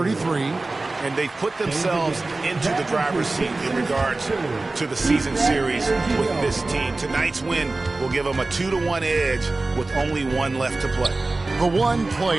And they've put themselves into the driver's seat in regards to the season series with this team. Tonight's win will give them a 2-1 edge with only one left to play. The one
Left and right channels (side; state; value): left; quieter; 3.2 dB